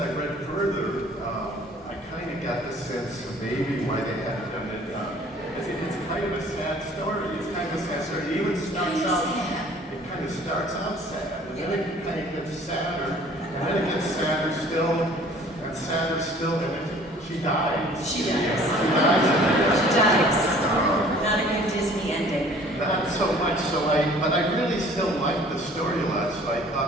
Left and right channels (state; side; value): normal; both; correlation 0.52